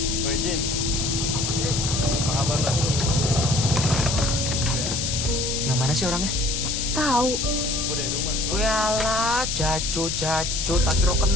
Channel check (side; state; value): left; noise; hiss, 1 dB below the sound